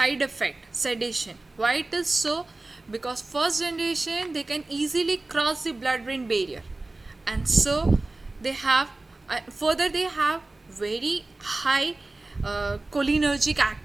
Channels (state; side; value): quieter; left; 3.0 dB